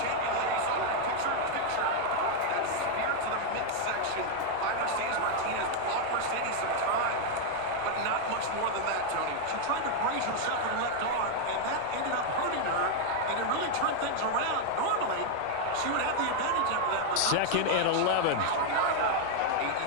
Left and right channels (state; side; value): different; both; correlation 0.00